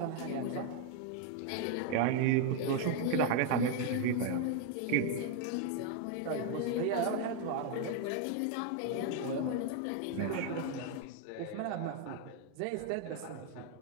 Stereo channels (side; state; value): both; different; correlation 0.01